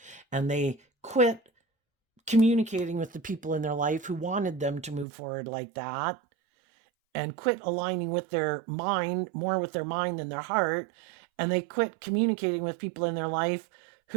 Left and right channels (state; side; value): drops out; left; at 5.1 s